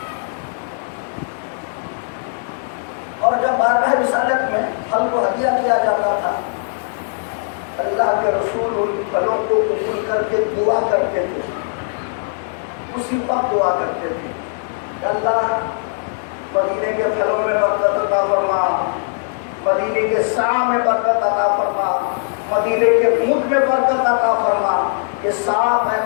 اور جب بارگاہ رسالت میں پھل کو ہدیہ کیا جاتا تھا, اللہ کے رسول ان پھلوں کو قبول کر کے دعا کرتے تھے. اسی وقت دعا کرتے تھے کہ اللہ مدینے کے پھلوں میں برکت عطا فرما, مدینے کے سا میں برکت عطا فرما, مدینے کے مد میں برکت عطا فرما. یہ سا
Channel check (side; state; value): right; silent; digital silence